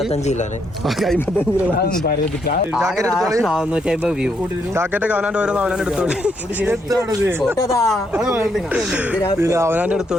ജാക്കറ്റൊക്കെ അവനാൻ്റെ ഓരോന്ന് അവനാൻ്റെ എടുത്തോളി. അവനാൻ്റെ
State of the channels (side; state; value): both; normal; correlation 0.76